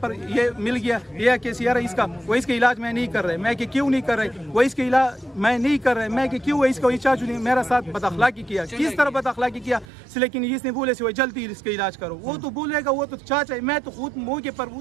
ये मिल गया ये कि यार इसका वो इसका इलाज मैं नहीं कर रहे। मैं कि क्यों नहीं कर रहे? वो इसका इलाज मैं नहीं कर रहे। मैं कि क्यों इसका इचार्ज ने मेरा साथ बदअखलाकी किया। किस तरह बदअखलाकी किया? लेकिन इसने बोले वो जल्दी इसका इलाज करो। वो तो बोलेगा, वो तो चाचा है, मैं तो खुद मौके पर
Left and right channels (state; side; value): drops out; left; at 9.9 s